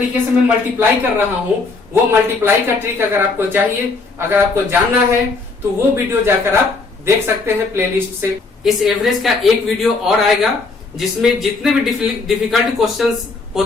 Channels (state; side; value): quieter; right; 4.0 dB